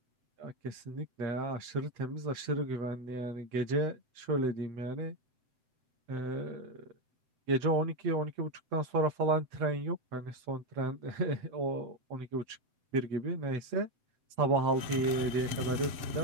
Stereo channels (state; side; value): late; left; 7.8 ms